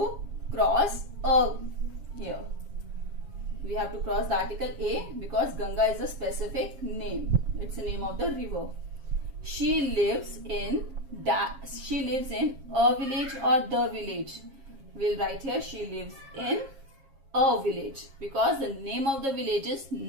cross a here. We have to cross the article a because Ganga is a specific name. It's the name of the river. She lives in a village or the village. We'll write here she lives in a village because the name of the village is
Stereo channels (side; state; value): left; late; 7.4 ms